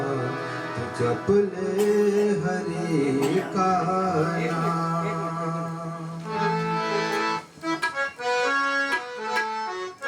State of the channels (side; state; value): both; identical; correlation 1.00